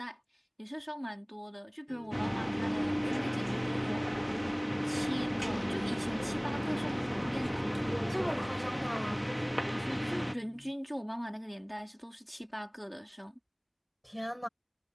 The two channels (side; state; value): both; identical; correlation 1.00